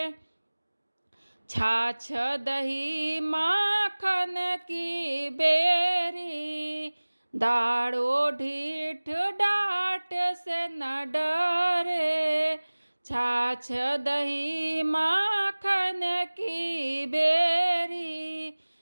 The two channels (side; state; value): both; inverted; correlation -1.00